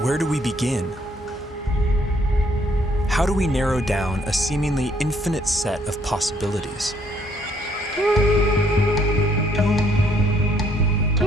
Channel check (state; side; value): normal; both; correlation 0.67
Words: where do we begin? How do we narrow down a seemingly infinite set of possibilities?